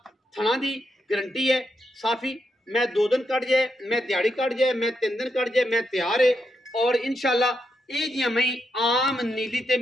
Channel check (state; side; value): normal; both; correlation 0.82